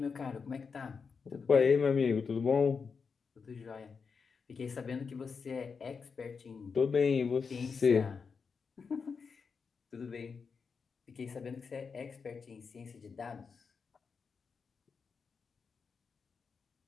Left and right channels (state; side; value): quieter; right; 5.5 dB